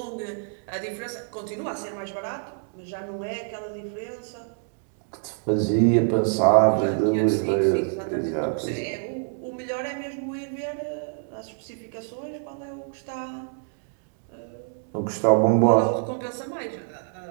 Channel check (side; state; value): left; silent; digital silence